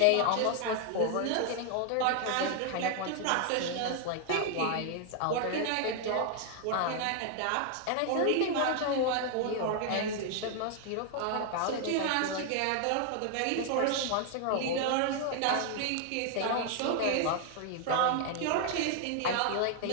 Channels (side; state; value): both; different; correlation 0.00